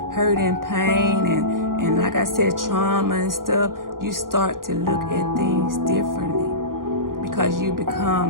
hurt and pain and like I said, trauma and stuff, you start to look at things differently because you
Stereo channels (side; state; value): left; late; 0.91 ms